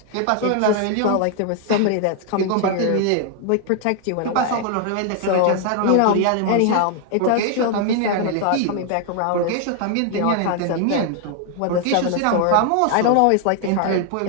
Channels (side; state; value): both; different; correlation 0.00